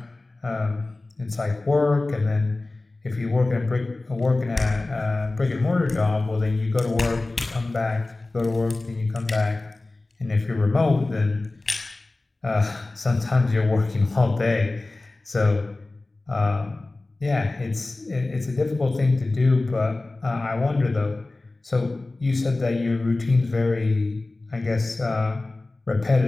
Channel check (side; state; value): right; quieter; 3.1 dB